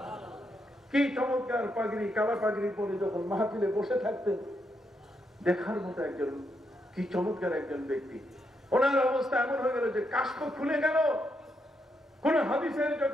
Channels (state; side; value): normal; both; correlation 0.80